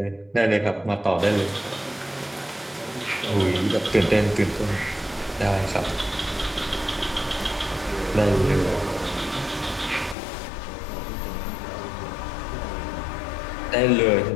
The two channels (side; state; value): right; drops out; at 10.2 s